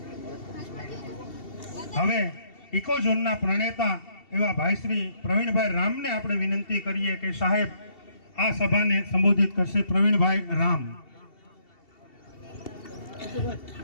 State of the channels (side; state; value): right; late; 2.7 ms